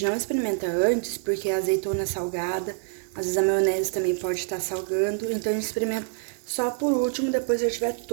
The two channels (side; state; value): left; silent; digital silence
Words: não experimenta antes, porque a azeitona é salgada, às vezes a maionese também pode estar salgando, então a gente experimenta só por último, depois que já tiver